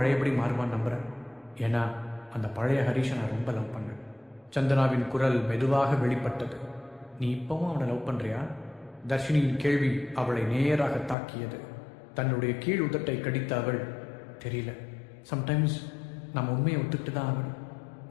மாறுவான்னு நம்புகிறேன். ஏன்னா அந்த பழைய ஹரிஷை நான் ரொம்ப லவ் பண்ணேன். சந்தனாவின் குரல் மெதுவாக வெளிப்பட்டது. நீ இப்பவும் அவனை லவ் பண்ணுறியா? தர்ஷினியின் கேள்வி அவளை நேராக தாக்கியது. தன்னுடைய கீழ் உதட்டை கடித்த அவள், தெரியல, சம்டைம்ஸ் நம்ம உண்மையை ஒத்துக்கிட்டு தான் ஆகணும்.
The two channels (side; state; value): right; drops out; at 11.2 s